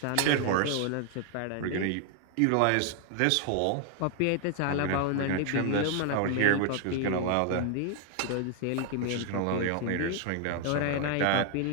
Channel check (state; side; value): different; both; correlation 0.00